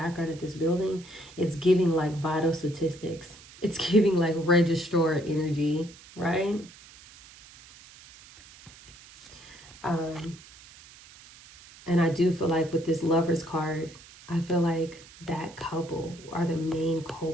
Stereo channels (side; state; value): right; noise; hiss, 21 dB below the sound